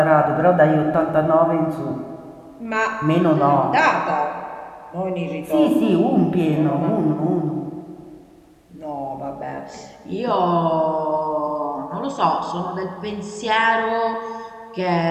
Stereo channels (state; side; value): identical; both; correlation 1.00